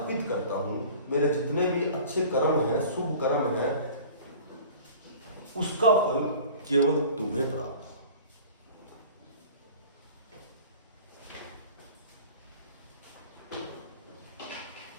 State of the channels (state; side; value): inverted; both; correlation -0.43